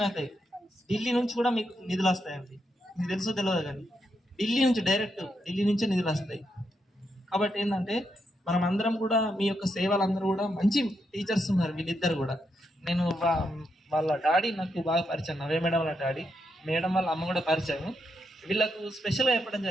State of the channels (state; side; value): normal; both; correlation 0.82